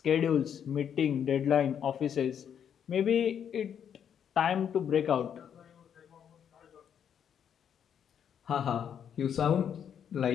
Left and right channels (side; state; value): right; quieter; 8.5 dB